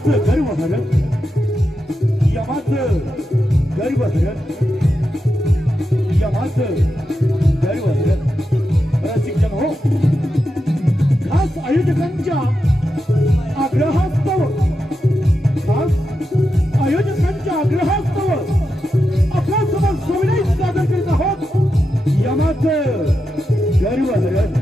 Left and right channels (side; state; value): both; normal; correlation 0.88